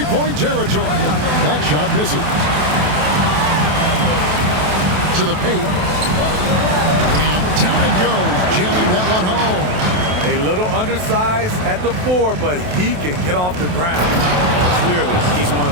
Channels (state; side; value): late; left; 28 ms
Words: territory, that shot misses. To the paint. And down it goes, jamming that one home. A little undersized at the 4, but he can get off the ground. Clearly, he's one